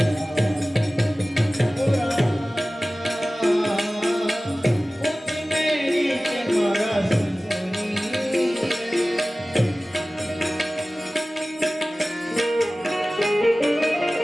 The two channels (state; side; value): normal; both; correlation 0.97